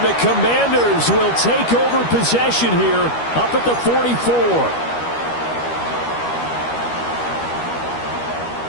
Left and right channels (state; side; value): late; right; 13 ms